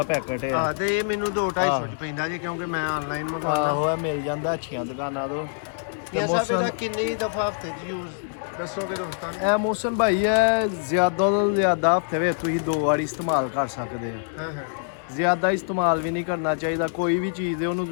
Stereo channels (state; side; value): silent; right; digital silence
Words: ਪੈਕਟ ਹੈ। ਹਾਂ ਤੇ ਇਹ ਮੈਨੂੰ 2-250 ਚ ਪੈਂਦਾ ਜੀ ਕਿਉਂਕਿ ਮੈਂ ਆਨਲਾਈਨ ਮੰਗਵਾਉਂਦਾ। ਆਹੋ ਇਹ ਮਿਲ ਜਾਂਦਾ ਅੱਛੀਆਂ ਦੁਕਾਨਾਂ ਤੋਂ। ਮੀਆਂ ਸਾਹਿਬ ਇਹਦਾ ਕਿੰਨੀ ਦਫਾ ਹਫਤੇ 'ਚ ਯੂਜ਼ ਦੱਸੋਗੇ ਦੋਸਤਾਂ ਨੂੰ? ਇਹ ਮੌਸਮ ਭਾਈ ਹੈ ਜ਼ਿਆਦਾ ਤੋਂ ਜ਼ਿਆਦਾ ਹਫਤੇ ਵਿੱਚ ਤੁਸੀਂ 2 ਵਾਰੀ ਇਸਤੇਮਾਲ ਕਰ ਸਕਦੇ ਹੋ। ਹਾਂ ਹਾਂ ਜ਼ਿਆਦਾ ਇਸਤੇਮਾਲ ਵੀ ਨਹੀਂ ਕਰਨਾ ਚਾਹੀਦਾ। ਕੋਈ ਵੀ ਚੀਜ਼ ਹੈ ਉਹਨੂੰ